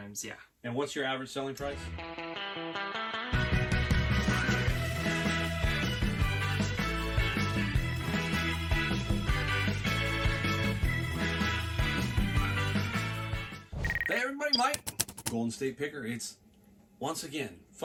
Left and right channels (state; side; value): identical; both; correlation 1.00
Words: yeah. And what's your average selling price? Hey everybody, Mike, Golden State Picker. It's once again